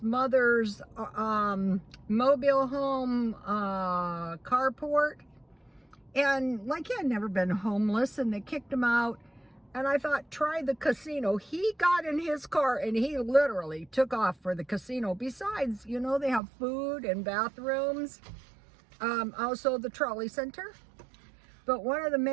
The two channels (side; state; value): left; drops out; at 16.4 s